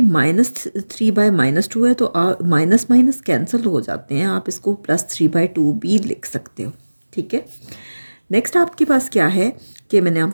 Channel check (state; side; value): inverted; both; correlation -1.00